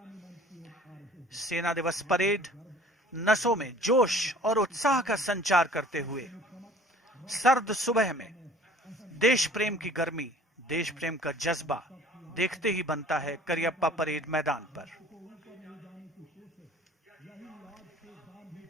सेना दिवस परेड नसों में जोश और उत्साह का संचार करते हुए सर्द सुबह में देश प्रेम की गर्मी, देश प्रेम का जज्बा देखते ही बनता है करियप्पा परेड मैदान पर।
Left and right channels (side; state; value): both; normal; correlation 0.49